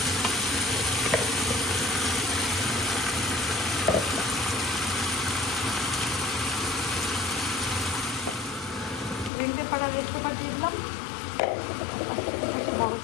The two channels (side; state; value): right; drops out; at 9.3 s